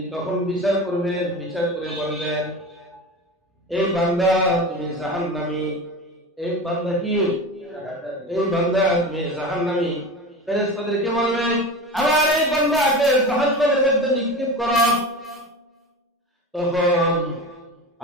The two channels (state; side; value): normal; both; correlation 0.29